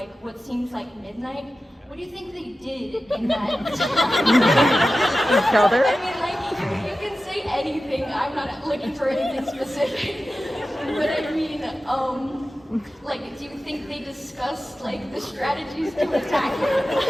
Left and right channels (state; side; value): normal; both; correlation 0.94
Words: what seems like midnight. What do you think they did in that time? Shoulder? I mean, like, you can say anything. I'm not looking for anything specific. But I mean, like, do you think they discussed, like, the strategies to attack him?